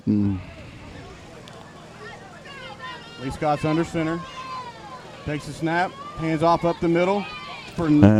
Lee Scott's under center. Takes a snap, hands off up the middle. for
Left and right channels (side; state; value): both; identical; correlation 1.00